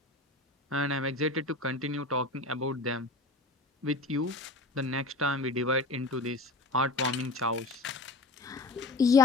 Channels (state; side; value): quieter; right; 3.0 dB